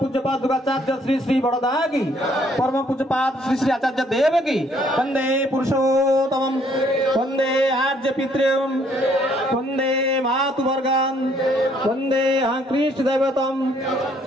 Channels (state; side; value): normal; both; correlation 0.65